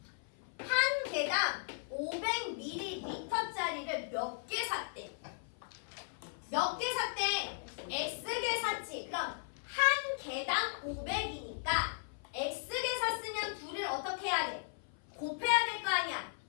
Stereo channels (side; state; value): right; silent; 53 dB below the other